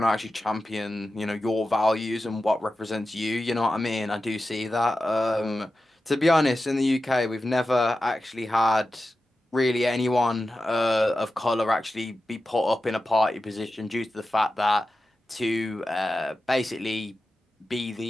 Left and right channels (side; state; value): both; normal; correlation 0.93